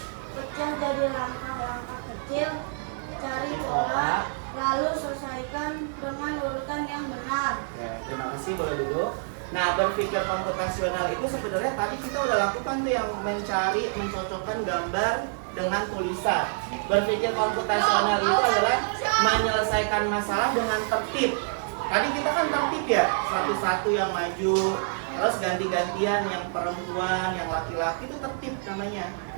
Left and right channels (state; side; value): silent; left; 60 dB below the other